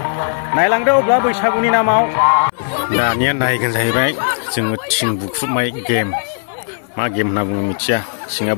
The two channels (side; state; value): right; silent; 61 dB below the other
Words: नायलांदो अब्ला बैसागुनि नामाव दानिया नायगोन जाहैबाय जोङो थिं बुख्रुबनाय गेम मा गेम होनना बुङो मिथिया थिंआ